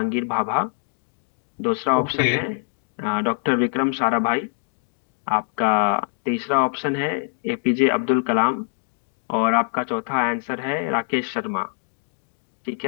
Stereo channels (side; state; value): right; silent; 63 dB below the other